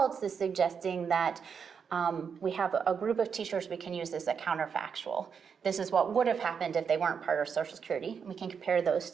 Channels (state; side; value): quieter; left; 6.5 dB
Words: is suggesting that we have a group of teachers we can use as a counterfactual. This is what would have happened if they weren't part of Social Security. We can compare those